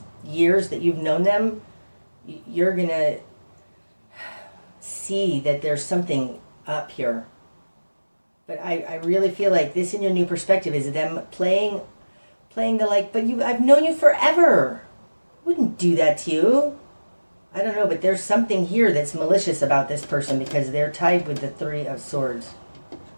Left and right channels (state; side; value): inverted; both; correlation -1.00